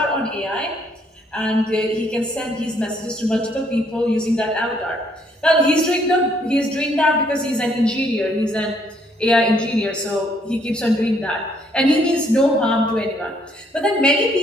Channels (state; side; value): normal; both; correlation 0.67